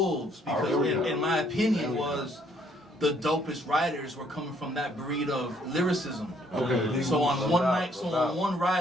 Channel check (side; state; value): both; normal; correlation 0.66